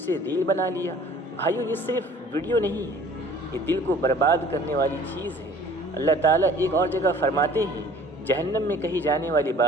ریل بنا لیا۔ بھائیو، یہ صرف ویڈیو نہیں ہے، یہ دل کو برباد کرنے والی چیز ہے۔ اللہ تعالیٰ ایک اور جگہ فرماتے ہیں، جہنم میں کہی جانے والی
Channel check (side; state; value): both; normal; correlation 0.51